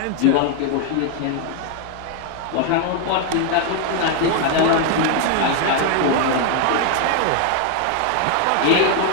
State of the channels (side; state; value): both; different; correlation 0.01